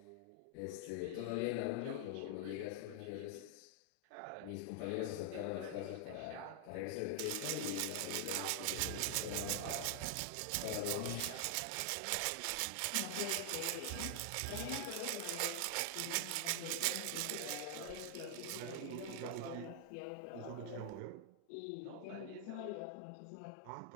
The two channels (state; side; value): different; both; correlation 0.00